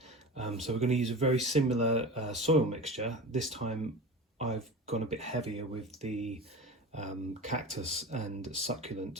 So we're going to use a very similar soil mixture. This time I've gone a bit heavier with the cactus and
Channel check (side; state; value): both; normal; correlation 0.32